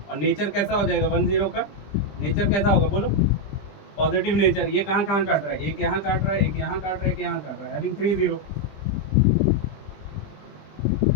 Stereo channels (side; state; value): right; late; 20 ms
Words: और नेचर कैसा हो जाएगा 1 0 का, नेचर कैसा होगा बोलो, पॉजिटिव नेचर। ये कहाँ काट रहा है, एक यहाँ काट रहा है, एक यहाँ काट रहा है, एक यहाँ काट रहा है, हैविंग 3 0।